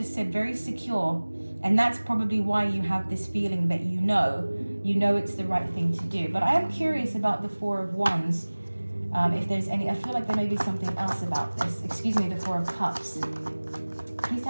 said very secure, and that's probably why you have this feeling that you know it's the right thing to do. But I am curious about the 4 of Wands. If there's any, I feel like there may be something else about this. Excuse me, the 4 of Cups. Please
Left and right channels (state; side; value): inverted; both; correlation -1.00